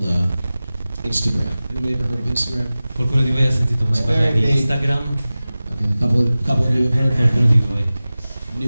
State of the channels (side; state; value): both; inverted; correlation -0.97